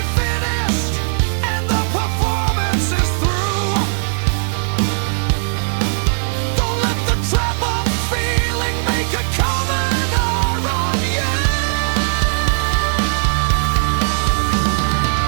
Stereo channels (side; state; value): left; silent; digital silence